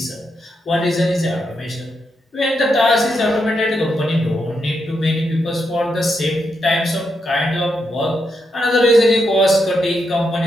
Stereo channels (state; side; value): normal; both; correlation 0.82